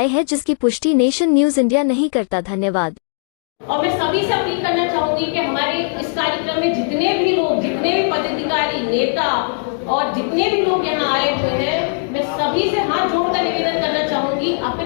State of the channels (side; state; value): right; silent; 67 dB below the other